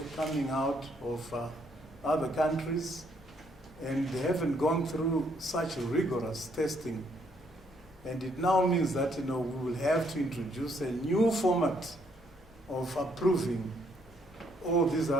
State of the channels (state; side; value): normal; both; correlation 0.70